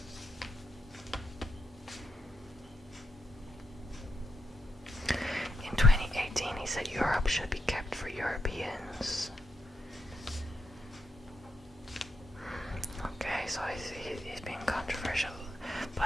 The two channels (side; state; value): both; normal; correlation 0.80